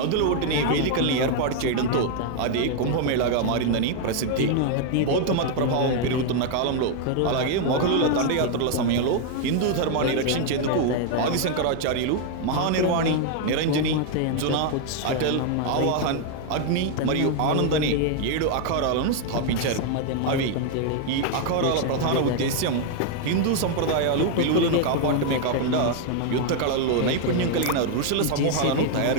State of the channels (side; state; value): both; different; correlation 0.00